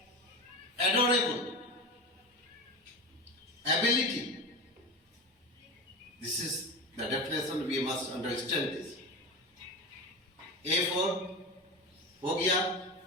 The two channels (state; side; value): normal; both; correlation 0.25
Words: Adorable, ability. This is the definition, we must understand this. A for हो गया।